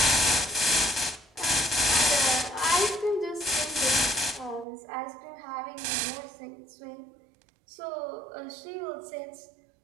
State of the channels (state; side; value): drops out; left; at 4.7 s